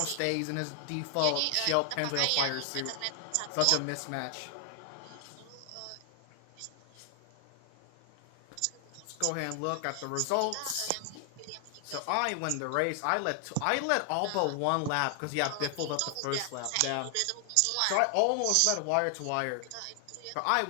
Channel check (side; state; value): both; different; correlation 0.00